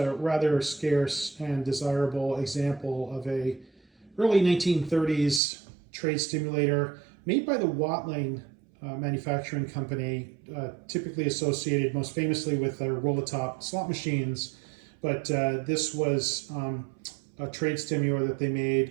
rather scarce and desirable example of a early 1930s trade stimulator made by the Watling manufacturing company, typically associated most famously with their roll-a-top slot machines. But this was a trade stimulator that they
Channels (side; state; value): left; drops out; at 5.4 s